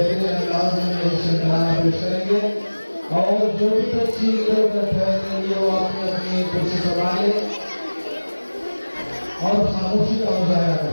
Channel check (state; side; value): inverted; both; correlation -1.00